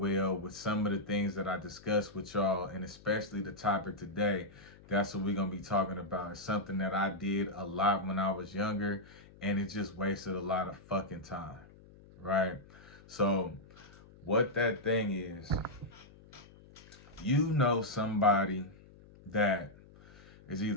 with some of the things that I discussed with y'all, and especially the topic today. That's what we're going to be talking about. It's something that I did a lot when I was younger, and it just wasted a lot of fucking time, right? So what that thing is, you know somebody that is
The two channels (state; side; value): noise; left; hum, 22 dB below the sound